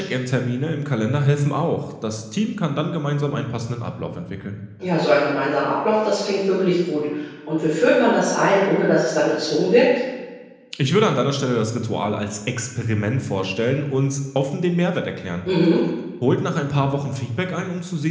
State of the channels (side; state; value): both; identical; correlation 1.00